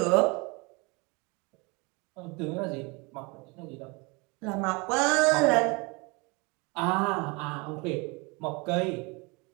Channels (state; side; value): quieter; left; 28.1 dB